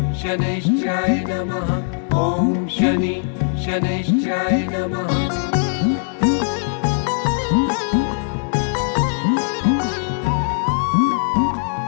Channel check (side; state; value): right; silent; digital silence